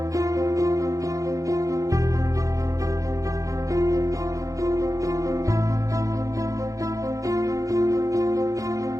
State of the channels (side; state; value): left; late; 0.16 ms